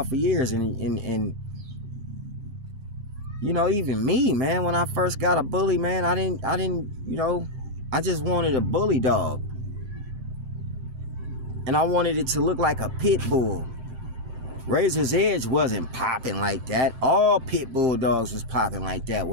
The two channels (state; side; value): late; left; 7.8 ms